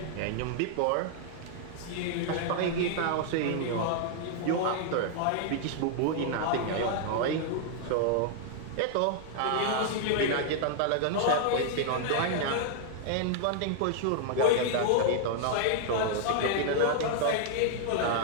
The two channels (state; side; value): different; both; correlation 0.00